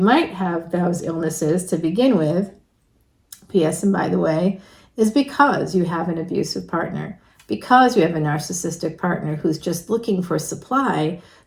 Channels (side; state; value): both; identical; correlation 1.00